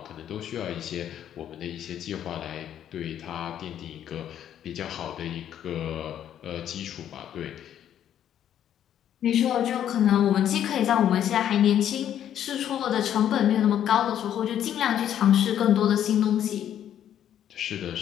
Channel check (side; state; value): right; quieter; 10.3 dB